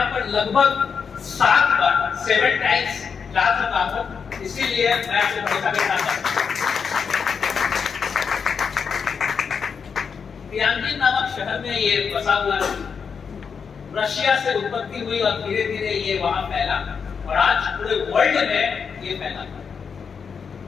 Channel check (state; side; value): quieter; right; 6.2 dB